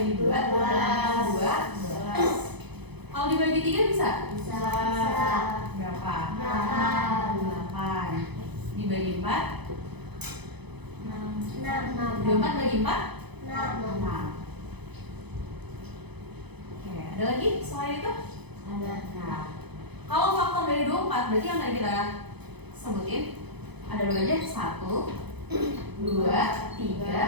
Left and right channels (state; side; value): late; left; 0.98 ms